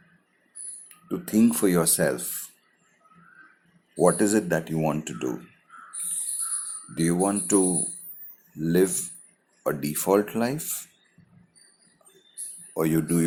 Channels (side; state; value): both; identical; correlation 1.00